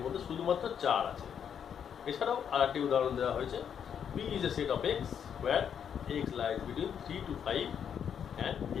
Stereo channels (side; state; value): right; quieter; 8.1 dB